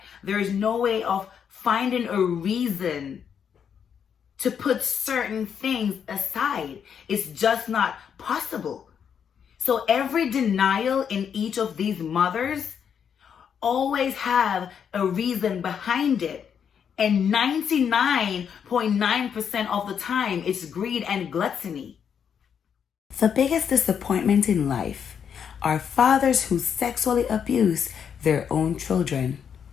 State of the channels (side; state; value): right; quieter; 7.7 dB